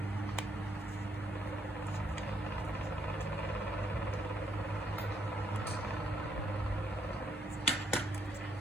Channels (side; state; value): both; normal; correlation 0.74